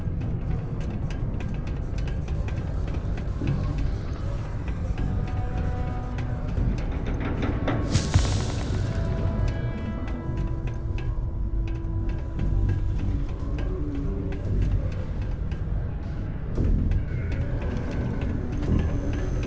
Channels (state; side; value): identical; both; correlation 1.00